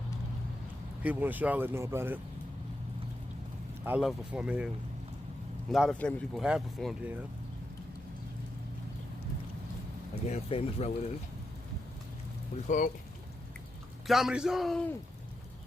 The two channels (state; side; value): normal; both; correlation 0.86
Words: people in Charlotte know about it. I love performing here. A lot of famous people have performed here. Again, famous relatives. What do you call it? Comedy Zone!